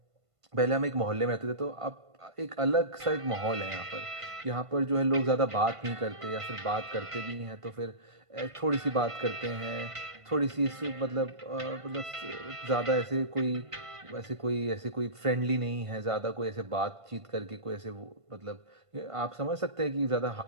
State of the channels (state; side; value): late; left; 1.5 ms